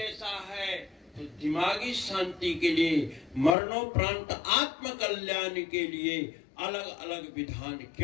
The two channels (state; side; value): drops out; right; at 3.6 s